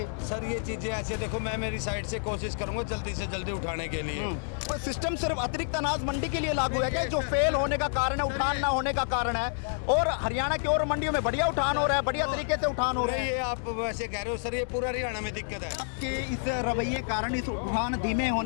सर ये चीजें ऐसे देखो, मैं मेरी साइड से कोशिश करूंगा जल्दी से जल्दी उठाने के लिए। सिस्टम सिर्फ अतिरिक्त अनाज मंडी के लिए लागू है क्या? जो फेल होने का कारण है, उठान ना होने का कारण है, और हरियाणा की और मंडियों में बढ़िया उठान हो रहा है, बढ़िया तरीके से उठान हो रहा है। ये आप वैसे कह रहे हो सर, ये पूरा हरियाणा में दिक्कत है कि इस रवैये कारण, इस उठान धीमे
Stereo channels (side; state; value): right; silent; digital silence